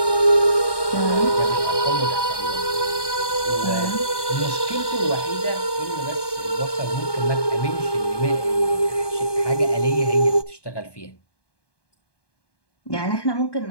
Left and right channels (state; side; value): late; right; 1.2 ms